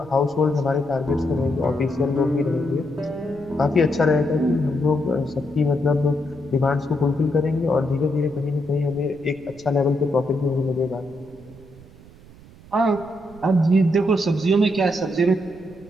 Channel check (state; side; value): noise; right; rumble, 22 dB below the sound